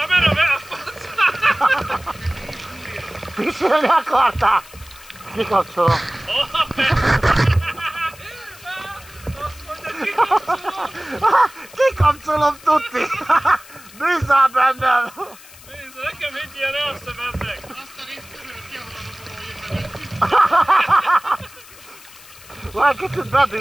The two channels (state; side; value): noise; left; hiss, 21 dB below the sound